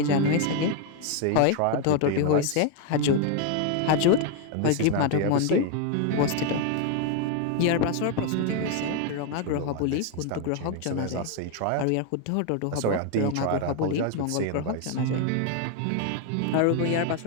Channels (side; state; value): both; different; correlation 0.01